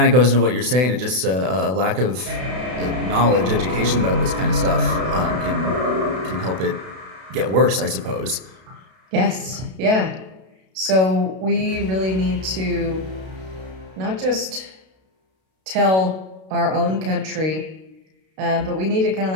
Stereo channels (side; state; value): left; late; 32 ms